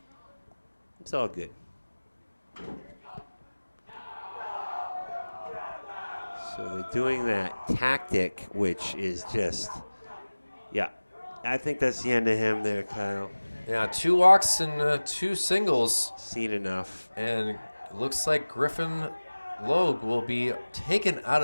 It's all good. So they're doing that tactic, which is just, yeah. I think that's the end of him there, Kyle. Yeah, 2 walks and 2 singles. Seen enough. And looks like Griffin Logue will be taken out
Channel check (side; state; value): both; inverted; correlation -1.00